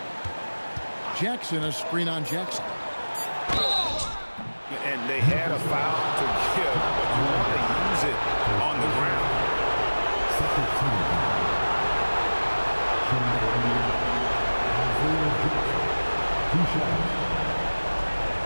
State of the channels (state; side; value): inverted; both; correlation -1.00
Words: Jackson, a screen on Jackson. And they had a foul to give, but you want to use it on the ground.